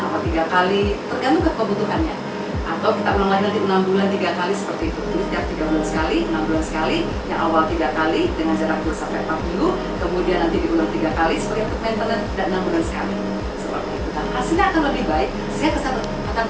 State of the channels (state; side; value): identical; both; correlation 1.00